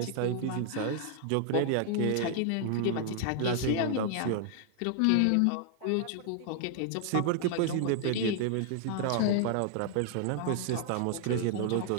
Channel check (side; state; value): both; different; correlation 0.00